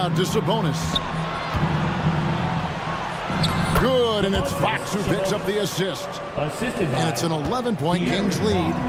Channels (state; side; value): identical; both; correlation 1.00